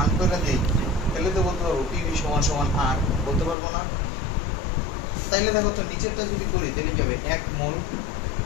1 করে দেই তাহলে তো বলতে পারবো পিভি সমান সমান আর বলতে পারবো না তাইলে দেখো তো নিচেরটা যদি করি তাহলে কি হবে 1 মোল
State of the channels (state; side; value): drops out; right; at 3.6 s